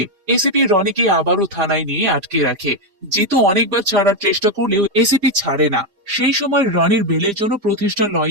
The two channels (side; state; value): left; late; 4.9 ms